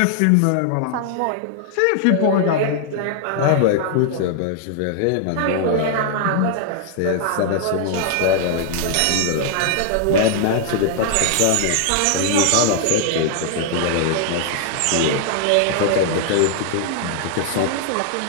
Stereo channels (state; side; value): different; both; correlation 0.00